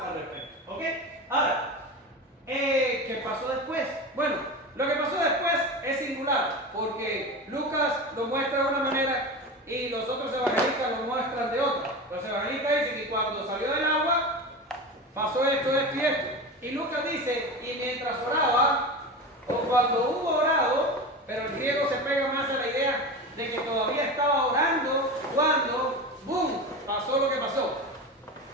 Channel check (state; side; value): normal; both; correlation 0.27